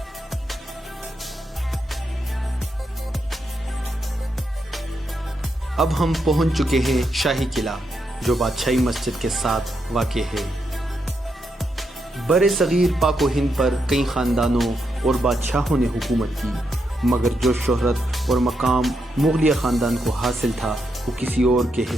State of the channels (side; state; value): both; normal; correlation 0.82